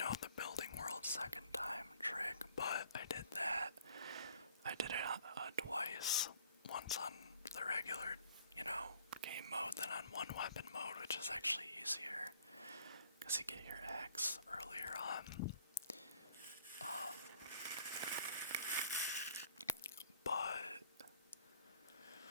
the building world second time trick, but I did that. I did it twice, once on the regular, game mode, then on one weapon mode, which is actually easier, because you get your axe earlier on.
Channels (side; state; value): both; inverted; correlation -0.57